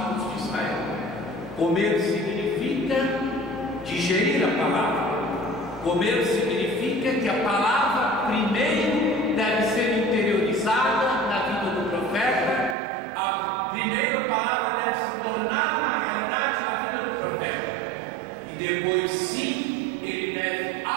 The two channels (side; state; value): left; drops out; at 12.8 s